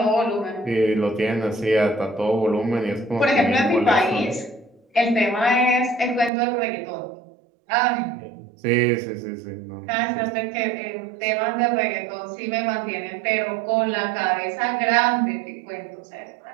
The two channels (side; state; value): left; drops out; at 6.3 s